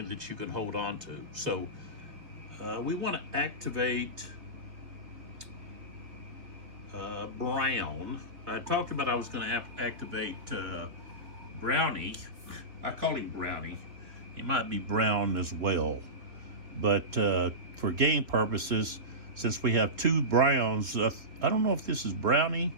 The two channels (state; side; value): late; left; 3.2 ms